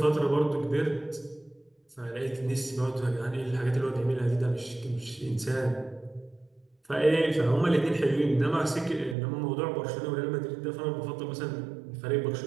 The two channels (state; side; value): drops out; left; at 9.2 s